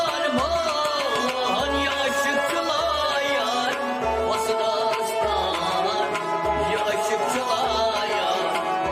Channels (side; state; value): both; identical; correlation 1.00